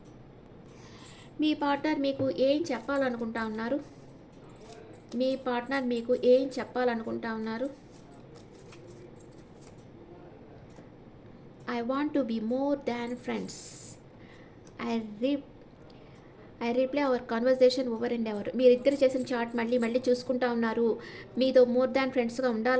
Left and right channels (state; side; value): identical; both; correlation 1.00